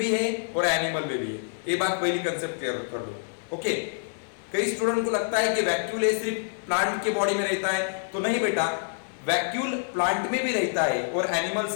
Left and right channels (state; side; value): silent; right; digital silence